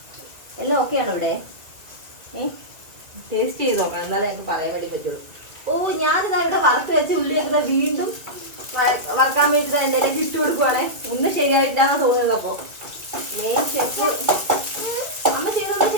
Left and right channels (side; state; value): left; late; 2.5 ms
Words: എല്ലാം ഓക്കെ ആണോ ഇവിടെ? ടേസ്റ്റ് ചെയ്ത് നോക്കണം, എന്നാലേ ഞങ്ങൾക്ക് പറയാൻ വേണ്ടി പറ്റുള്ളൂ. ഓ ഞാനിതാ ഇവിടെ വറുത്ത് വെച്ച് ഉള്ളി വെക്കുന്ന വീണ്ടും വറക്കാൻ വേണ്ടിയിട്ട് എൻ്റെ ഇട്ട് കൊടുക്കുവാണേ. ഒന്നും ശരിയായിട്ടില്ലാന്നാ തോന്നുന്നത്. അപ്പൊ മെയിൻ ഷെഫ് അമ്മ ചെയ്തൊന്നും